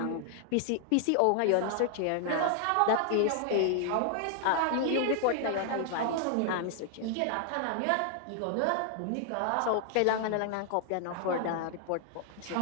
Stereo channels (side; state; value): both; different; correlation 0.00